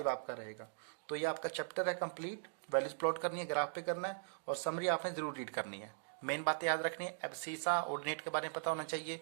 आपका रहेगा। तो ये आपका चैप्टर है कंप्लीट, वैल्यूज प्लॉट करनी है, ग्राफ पे करना है, और समरी आपने जरूर रीड करनी है। मेन बातें याद रखनी है, एब्सीसा ऑर्डिनेट के बारे में पता होना चाहिए,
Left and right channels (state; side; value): silent; left; digital silence